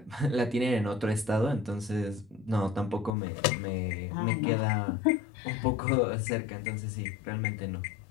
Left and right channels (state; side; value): drops out; right; at 3.1 s